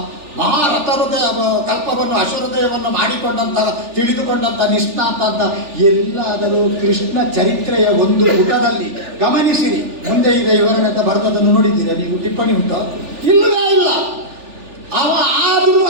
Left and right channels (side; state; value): left; late; 3.4 ms